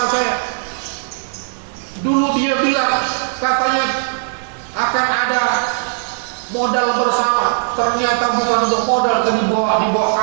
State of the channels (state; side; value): silent; left; 67 dB below the other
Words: saya. Dulu dia bilang katanya akan ada modal bersama, ternyata bukan untuk modal, tapi dibawa